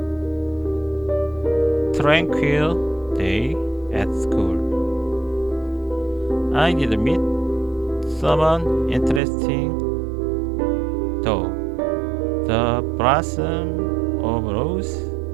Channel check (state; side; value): drops out; left; at 9.2 s